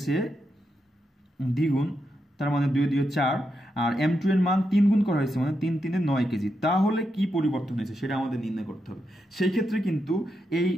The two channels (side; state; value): both; normal; correlation 0.84